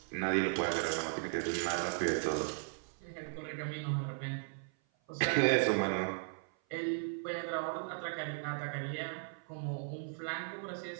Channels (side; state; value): left; silent; 53 dB below the other